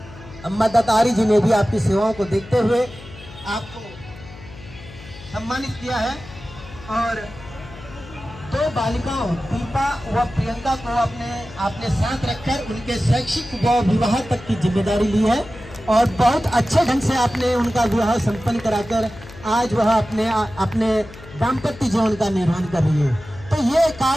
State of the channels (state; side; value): noise; left; hum, 17 dB below the sound